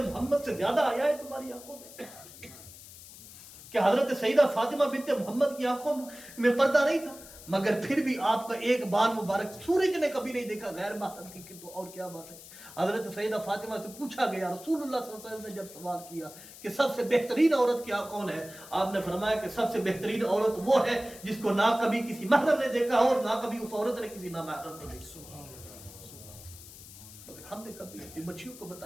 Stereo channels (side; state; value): left; noise; hiss, 17 dB below the sound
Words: محمد سے زیادہ آیا ہے تمہاری آنکھوں میں؟ کہ حضرت سیدہ فاطمہ بنت محمد کی آنکھوں میں پردہ نہیں تھا، مگر پھر بھی آپ کا ایک بال مبارک سورج نے کبھی نہیں دیکھا غیر محرم کی، تو اور کیا بات ہے. حضرت سیدہ فاطمہ سے پوچھا گیا، رسول اللہ صلی اللہ علیہ وسلم نے جب سوال کیا کہ سب سے بہترین عورت کیا کون ہے، آپ نے فرمایا کہ سب سے بہترین عورت وہ ہے جس کو نہ کبھی کسی محرم نے دیکھا اور نہ کبھی اس عورت نے کسی نامحرم نے دیکھا. ہم نے کبھی اپنی بچیوں کو